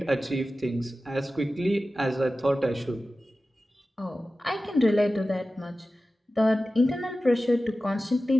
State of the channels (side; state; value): both; normal; correlation 0.95